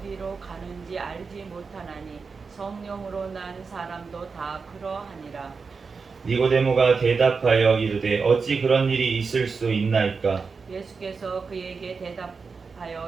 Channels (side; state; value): left; quieter; 4.9 dB